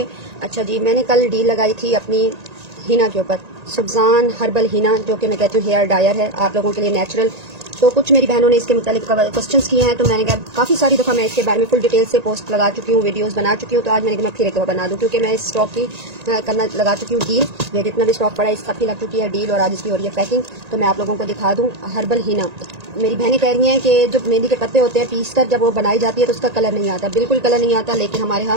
अच्छा जी, मैंने कल डील लगाई थी अपनी हिना के ऊपर, सुबजान हर्बल हिना, जो कि मैं कहती हूँ हेयर डायर है आप लोगों के लिए नेचुरल। तो कुछ मेरी बहनों ने इसके मुतालिक क्वेश्चंस किए हैं, तो मैंने कहा काफ़ी सारी दफ़ा मैं इसके बारे में फुल डिटेल से पोस्ट लगा चुकी हूँ, वीडियोस बना चुकी हूँ। तो आज मैंने कहा मैं फिर एक दफ़ा बना दूँ, क्योंकि मैं इस स्टॉक की करना लगा चुकी हूँ डील। ये जितना भी स्टॉक पड़ा है इस सब की लग चुकी है डील, और आज इसकी हो रही है पैकिंग। तो मैं आप लोगों को दिखा दूँ हर्बल हिना। मेरी बहनें कह रही हैं कि जो मेहंदी के पत्ते होते हैं पीस कर जब वो बनाई जाती है तो उसका कलर नहीं आता, बिल्कुल कलर नहीं आता। लेकिन हमारे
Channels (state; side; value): late; left; 1.9 ms